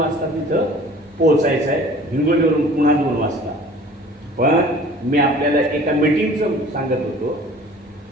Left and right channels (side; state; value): both; normal; correlation 0.48